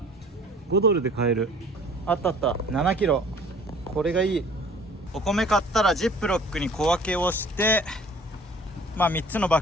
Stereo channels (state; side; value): normal; both; correlation 0.51